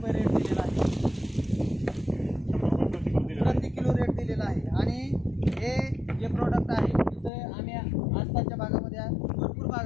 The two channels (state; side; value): drops out; right; at 7.3 s